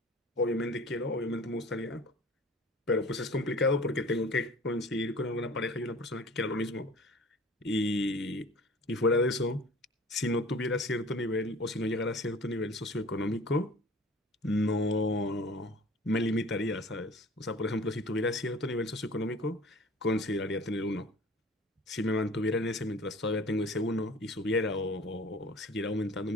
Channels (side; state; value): both; normal; correlation 0.45